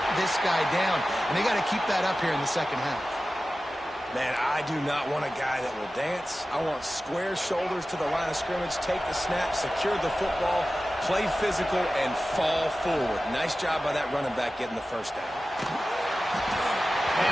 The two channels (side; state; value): both; normal; correlation 0.95